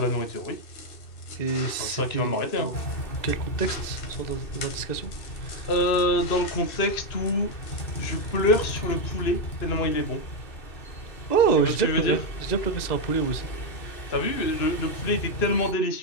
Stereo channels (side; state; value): right; late; 2.6 ms